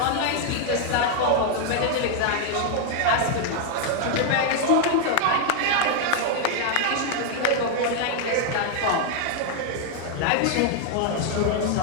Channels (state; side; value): different; both; correlation 0.00